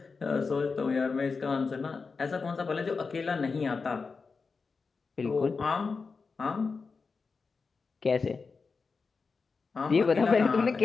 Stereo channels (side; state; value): right; quieter; 4.7 dB